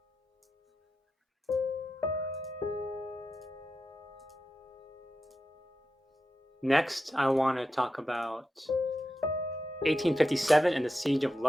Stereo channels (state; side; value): normal; both; correlation 0.89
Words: Next, I want to talk about 1857 and the Siege of